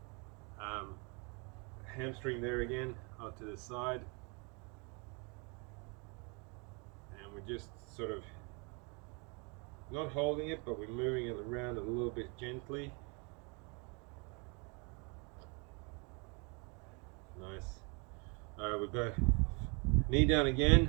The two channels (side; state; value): left; quieter; 32.5 dB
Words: hamstring there again, out to the side. And we're just sort of not holding it, but we're moving it around a little bit gently. Nice. Alright, we'll go knee down